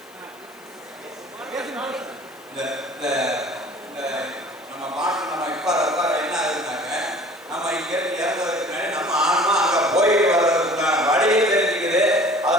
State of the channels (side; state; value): left; noise; hiss, 26 dB below the sound